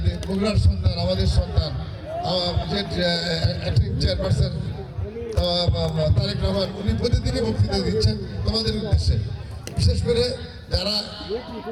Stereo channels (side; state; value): both; identical; correlation 1.00